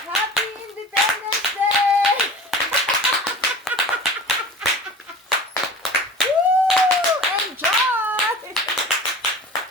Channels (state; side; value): normal; both; correlation 0.38